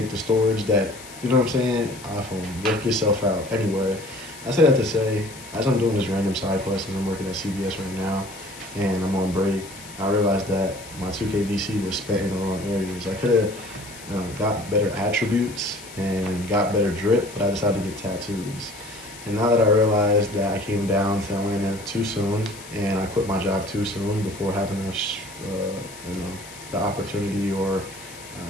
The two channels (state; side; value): noise; left; hiss, 16 dB below the sound